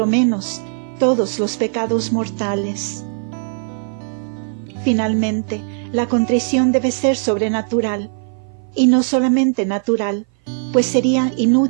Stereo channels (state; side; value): silent; left; 57 dB below the other